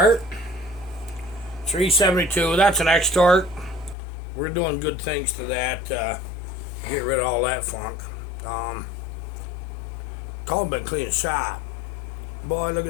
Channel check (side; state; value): right; drops out; at 4.0 s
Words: 372. That's an X-Torque. We're doing good things to that. Get rid of all that funk. Colin been cleaning shop. Boy, look